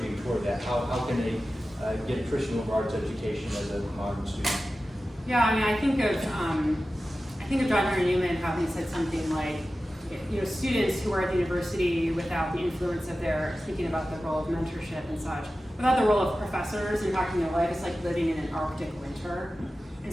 toward that. How can they get a Christian liberal arts education as a modern student? Yeah, I mean, I think of John Henry Newman, how he said something like, students who are at the university without the influence of their, speaking about the role of mentorship and such, without the role of professors impacting their life, it's like living in an Arctic winter.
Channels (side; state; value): both; normal; correlation 0.94